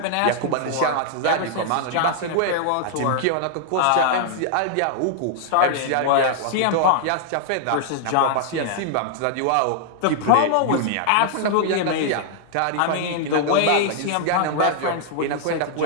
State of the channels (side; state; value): both; different; correlation -0.01